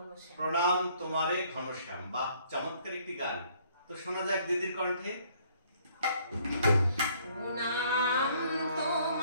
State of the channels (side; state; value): both; inverted; correlation -0.63